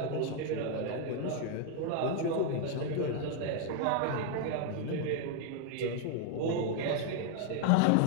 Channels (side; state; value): both; different; correlation 0.00